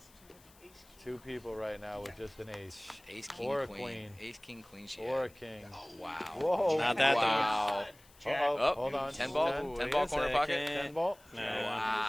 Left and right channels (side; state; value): left; noise; hiss, 26 dB below the sound